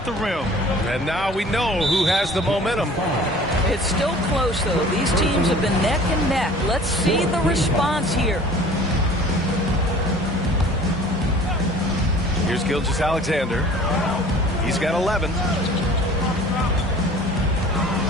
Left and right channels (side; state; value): both; normal; correlation 0.47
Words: the rim. And now we know who has the momentum. It's still close, though. These teams have been neck and neck. Let's see the response here. Here's Gilgeous-Alexander. He's got 11.